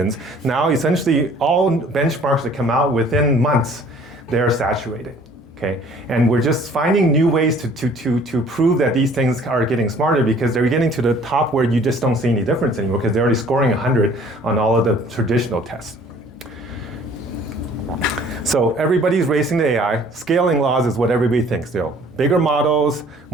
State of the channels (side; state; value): both; normal; correlation 0.54